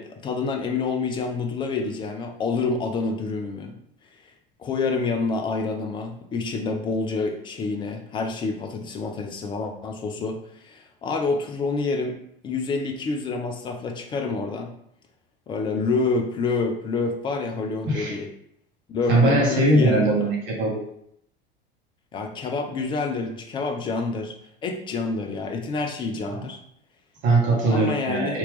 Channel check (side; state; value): both; normal; correlation 0.42